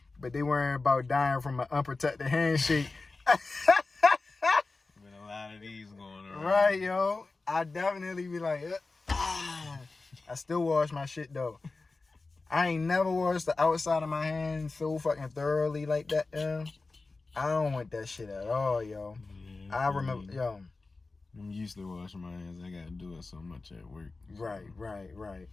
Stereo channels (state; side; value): quieter; right; 3.7 dB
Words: but they worrying about dying from an unprotected handshake. Been a lot of these going around. Right, yo. I definitely be like, I still wash my shit though. I ain't never washed the outside of my hands so fucking thoroughly like that, yo. I don't want that shit at all, yo. Yeah, I remember, yo. I'm used to washing my hands. I gotta do it so much at work. Right.